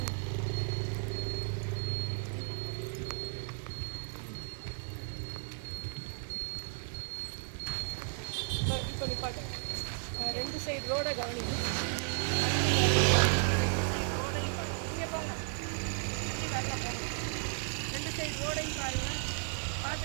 இப்போ நிப்பாட்டு. 2 சைடு ரோடை கவனிங்க. ரோடையும் பாருங்க. இங்கே போங்க, நல்லா போங்க. 2 சைடு ரோடையும் பாருங்கள்.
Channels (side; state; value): left; silent; 55 dB below the other